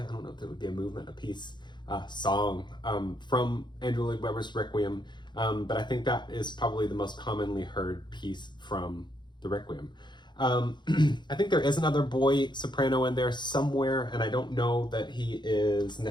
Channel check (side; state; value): right; late; 0.22 ms